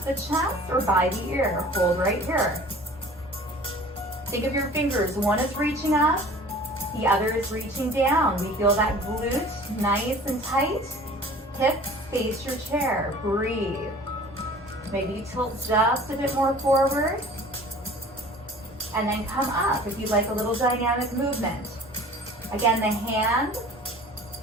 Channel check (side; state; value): both; normal; correlation 0.45